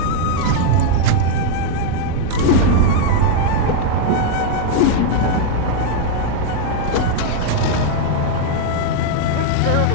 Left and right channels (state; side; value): different; both; correlation 0.00